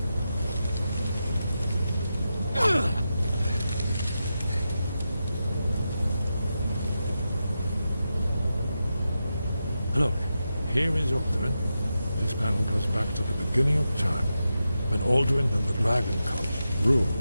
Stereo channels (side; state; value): both; inverted; correlation -0.89